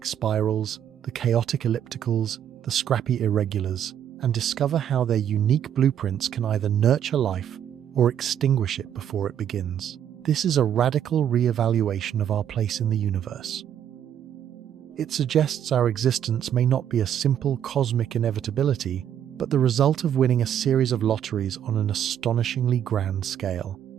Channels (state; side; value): quieter; left; 9.7 dB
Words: spirals, the chaotic ellipticals, the scrappy irregulars, and discover how their unique blueprints can either nurture life or extinguish it before it begins. This is a radical re-evaluation of our place in the universe. It suggests our existence may not be a simple cosmic inevitability, but the result of winning a series of lotteries on an astonishingly grand scale.